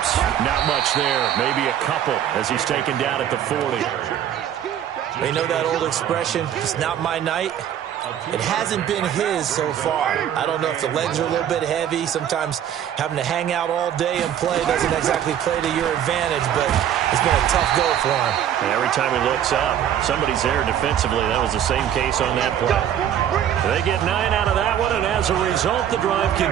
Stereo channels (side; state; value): left; quieter; 10.1 dB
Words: Not much there. Maybe a couple as he's taken down at the 40. You know that old expression, it's not my night? It hasn't been his so far. I don't know if the legs are a little bit heavy. Sometimes having to hang out all day and play doesn't exactly play to your advantage, but it's been a tough go for him. And every time he looks up, somebody's there defensively. That was the same case on that play. They get 9 out of that one, and as a result, the drive